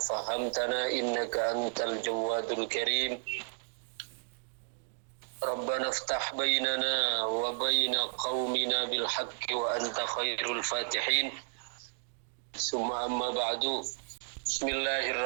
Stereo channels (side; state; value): left; silent; digital silence